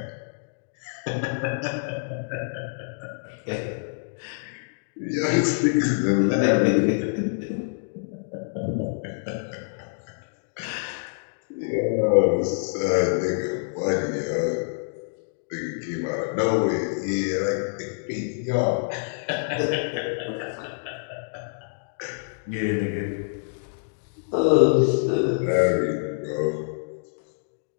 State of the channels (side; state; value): right; silent; digital silence